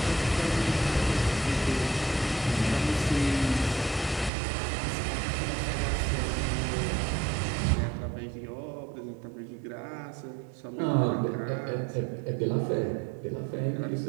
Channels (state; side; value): drops out; left; at 4.3 s